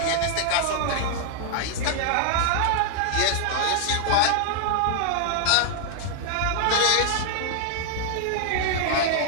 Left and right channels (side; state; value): both; different; correlation 0.00